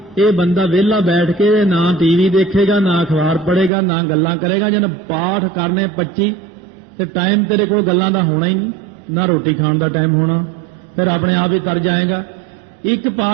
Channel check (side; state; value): left; drops out; at 3.7 s